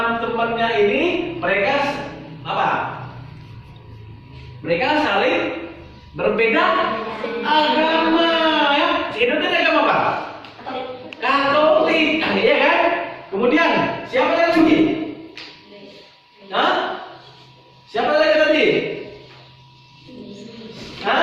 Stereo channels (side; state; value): both; identical; correlation 1.00